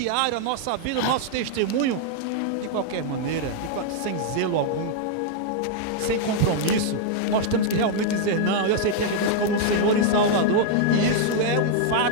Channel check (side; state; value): both; different; correlation 0.00